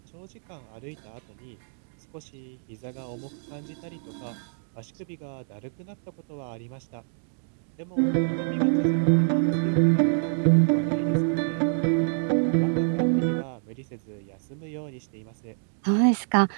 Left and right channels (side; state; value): left; silent; digital silence